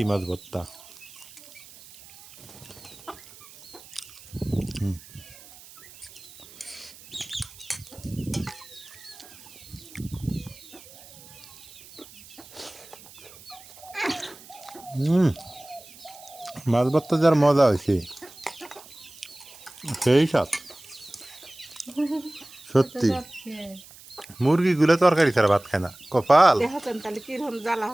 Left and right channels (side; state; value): right; noise; hiss, 20 dB below the sound